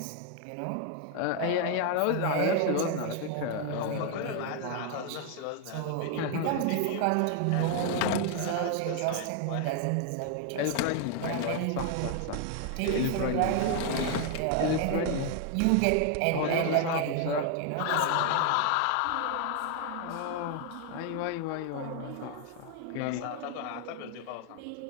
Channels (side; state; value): both; different; correlation 0.00